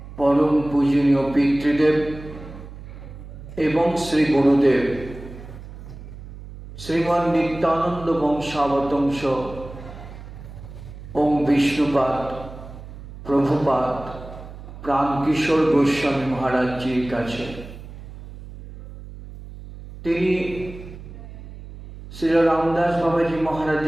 পরম পূজনীয় পিতৃদেব এবং শ্রী গুরুদেব শ্রীমান নিত্যানন্দ বংশাবতংশ ওম বিষ্ণুপাদ প্রভুপাদ প্রাণকিশোর গোস্বামী মহারাজজির কাছে। তিনি শ্রী রামদাস বাবাজি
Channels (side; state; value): right; noise; hum, 14 dB below the sound